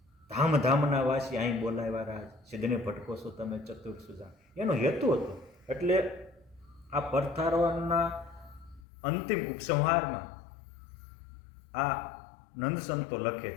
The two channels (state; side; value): drops out; right; at 8.8 s